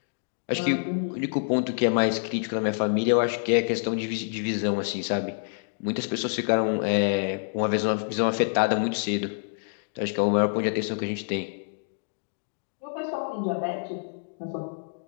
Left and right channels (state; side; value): silent; right; digital silence